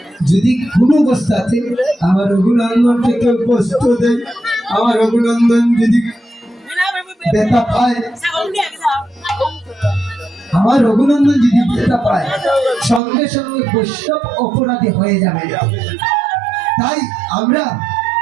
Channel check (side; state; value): left; drops out; at 13.0 s